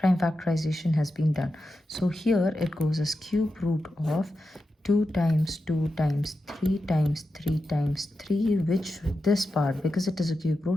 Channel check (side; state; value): both; normal; correlation 0.90